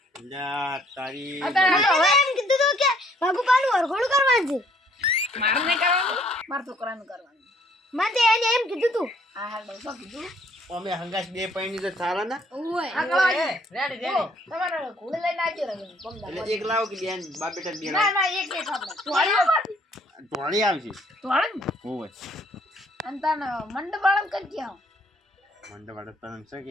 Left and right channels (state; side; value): normal; both; correlation 0.63